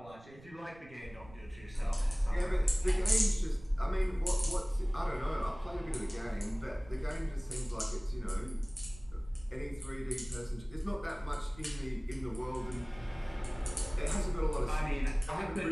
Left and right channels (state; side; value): noise; right; rumble, 20 dB below the sound